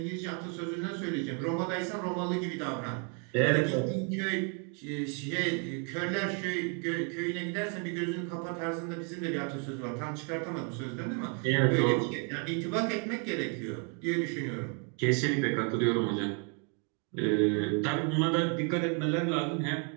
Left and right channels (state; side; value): quieter; left; 38.8 dB